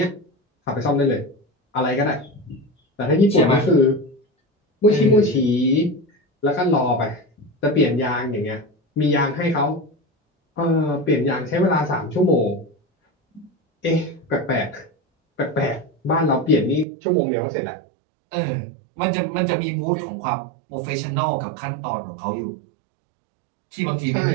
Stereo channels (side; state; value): left; drops out; at 16.9 s